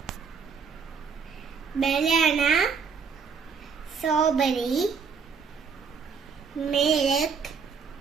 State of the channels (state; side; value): quieter; left; 5.9 dB